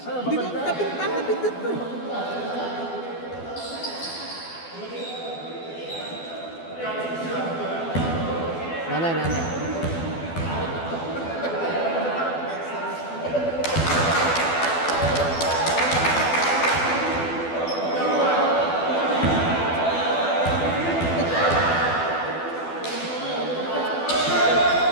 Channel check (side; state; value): right; late; 12 ms